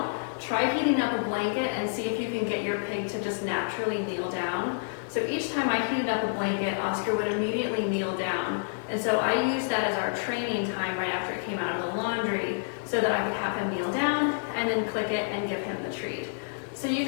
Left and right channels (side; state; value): right; silent; digital silence